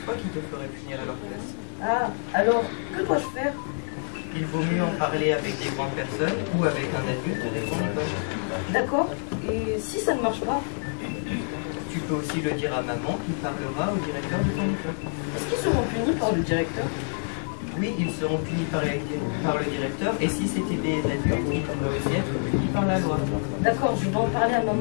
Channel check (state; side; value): silent; right; 60 dB below the other